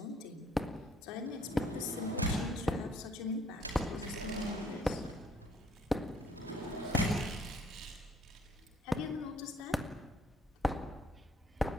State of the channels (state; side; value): normal; both; correlation 0.62